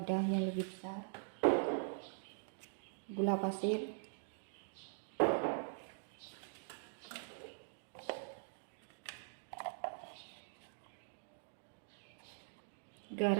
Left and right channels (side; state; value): left; silent; digital silence